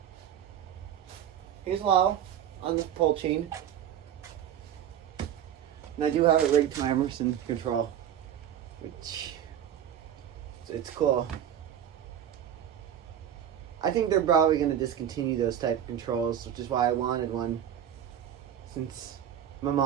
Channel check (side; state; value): left; quieter; 9.9 dB